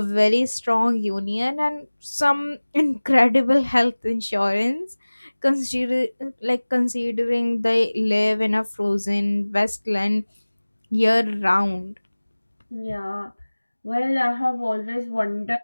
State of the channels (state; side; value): inverted; both; correlation -1.00